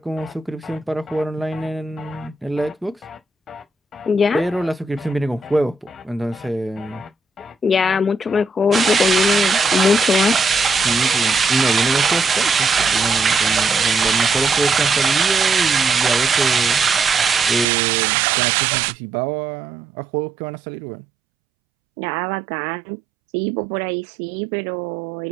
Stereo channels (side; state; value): left; drops out; at 17.7 s